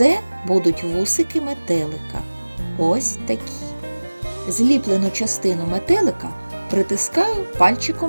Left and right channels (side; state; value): both; inverted; correlation -1.00